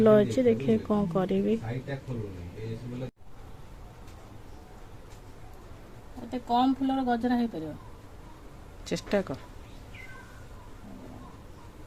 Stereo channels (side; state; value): both; identical; correlation 1.00